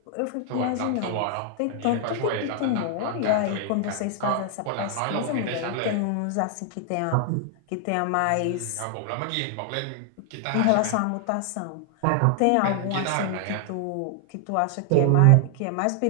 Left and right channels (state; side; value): different; both; correlation 0.00